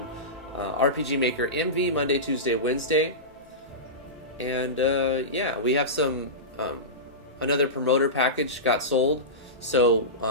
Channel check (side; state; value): both; normal; correlation -0.18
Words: RPG Maker MV Monday, Tuesday, Wednesday. And yeah, we have some another promoter package got sold. So